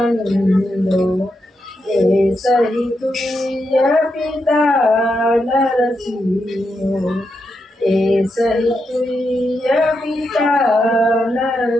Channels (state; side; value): normal; both; correlation 0.84